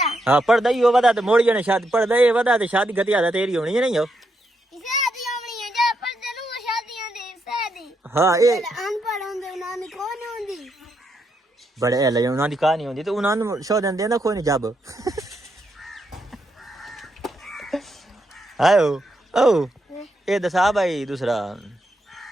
हाँ पर्दा ही हो बता तो मोड़ी जने शादी पर्दा ये बता तो शादी गति आदा तेरी होनी है नहीं हो शादी होनी है जब पर्दा नु शादियां दे शादी हाँ ये अनपढ़ होंदे उन्होंने कौन होंदी बड़े है ले उन्हां दी कहानी होंदी तो उन्हां नु शो देंदे ना कोई नहीं जब आयो ओ ये दसा भाई दूसरा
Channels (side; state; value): both; normal; correlation 0.80